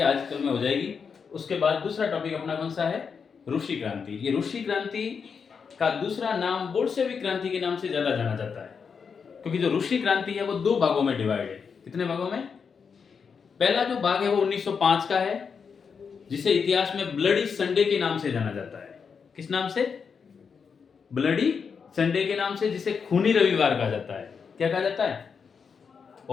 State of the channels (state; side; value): quieter; right; 6.0 dB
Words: आज कल में हो जाएगी। उसके बाद दूसरा टॉपिक अपना कौन सा है? रूसी क्रांति। ये रूसी क्रांति का दूसरा नाम बोल्शेविक क्रांति के नाम से ज्यादा जाना जाता है, क्योंकि जो रूसी क्रांति है वो दो भागों में डिवाइड है। कितने भागों में? पहला जो भाग है वो 1905 का है, जिसे इतिहास में ब्लडी संडे के नाम से जाना जाता है। किस नाम से? ब्लडी संडे के नाम से, जिसे खूनी रविवार कहा जाता है। क्या कहा जाता है?